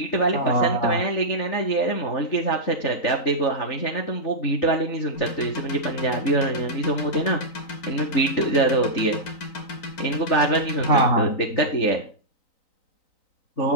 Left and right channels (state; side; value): late; right; 3.9 ms